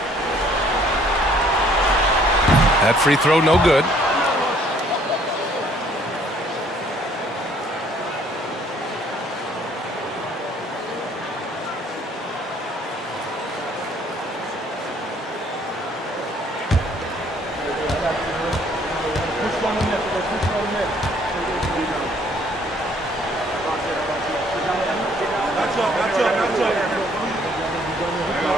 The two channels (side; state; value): both; normal; correlation 0.61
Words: That free throw no good.